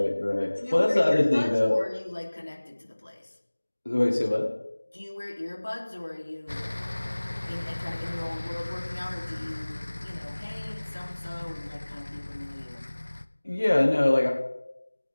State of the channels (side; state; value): both; inverted; correlation -1.00